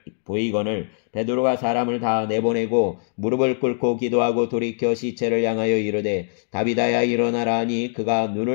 보이거늘 베드로가 사람을 다 내보내고 무릎을 꿇고 기도하고 돌이켜 시체를 향하여 이르되 다비다야 일어나라 하니 그가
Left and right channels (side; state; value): right; silent; digital silence